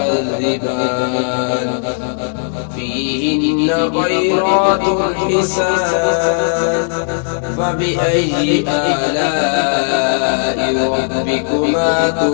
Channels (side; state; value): right; silent; digital silence